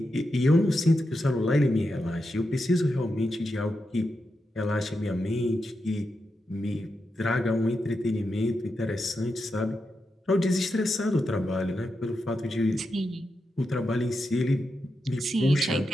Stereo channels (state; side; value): normal; both; correlation 0.87